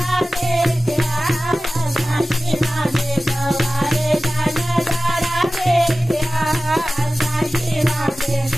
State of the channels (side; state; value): both; normal; correlation 0.95